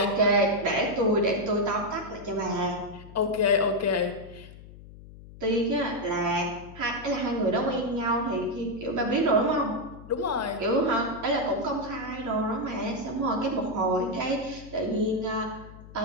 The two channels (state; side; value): noise; left; hum, 17 dB below the sound